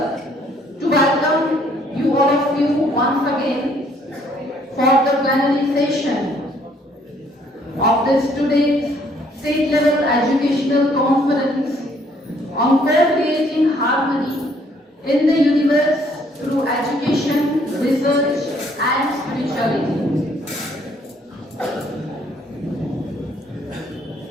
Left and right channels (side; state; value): both; normal; correlation 0.64